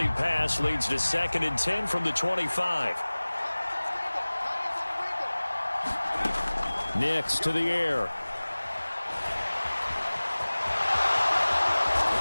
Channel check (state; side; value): inverted; both; correlation -1.00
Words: pass leads to 2nd and 10 from the 25. Nix to the air.